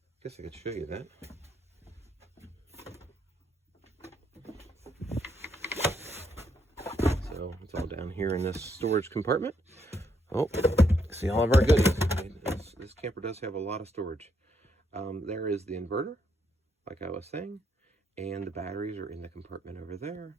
guess I could show you that. So it's all down here in this storage compartment. Oh, see all of our goodies. This camper does have a lot of storage. There is the inverter, like I was saying, and the batteries are in the compartment over there.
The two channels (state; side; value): normal; both; correlation 0.75